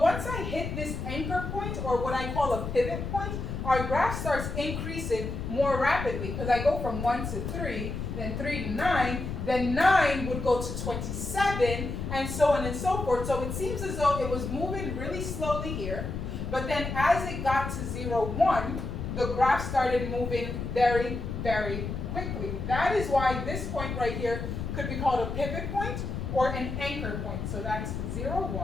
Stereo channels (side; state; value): left; noise; rumble, 5 dB below the sound